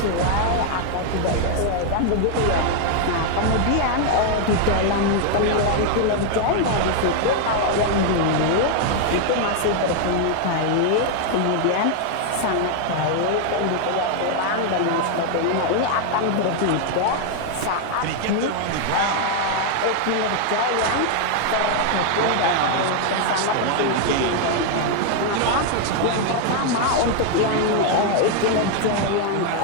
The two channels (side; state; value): both; different; correlation 0.00